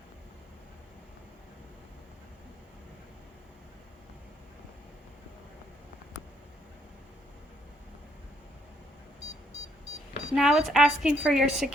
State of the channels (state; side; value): normal; both; correlation 0.70